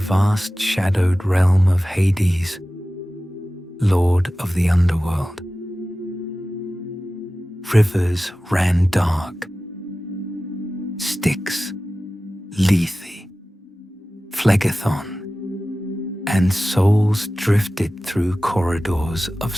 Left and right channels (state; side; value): normal; both; correlation 0.96